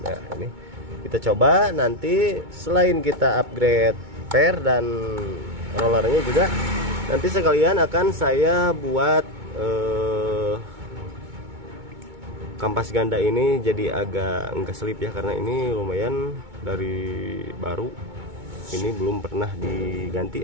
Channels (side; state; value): left; late; 2.2 ms